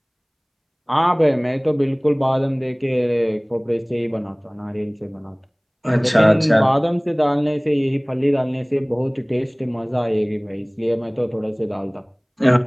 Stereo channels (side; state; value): both; identical; correlation 1.00